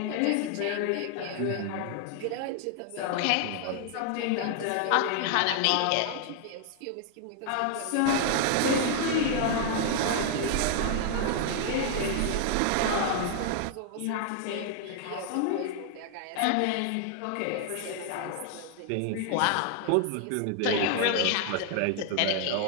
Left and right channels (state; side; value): different; both; correlation 0.00